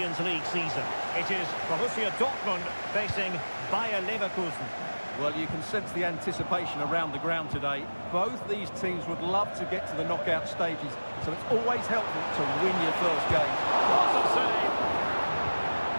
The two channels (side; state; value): both; inverted; correlation -1.00